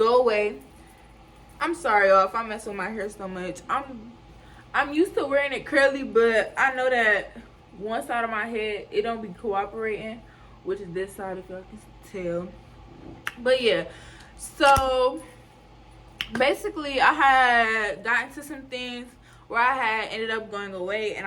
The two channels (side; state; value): both; identical; correlation 1.00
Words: away. I'm sorry, y'all, if I mess with my hair so much. I'm used to wearing it curly, but I know that one side of my head, it don't be cooperating, which is this side, if y'all can tell. But yeah, so basically I had got into some things where I had ended up going away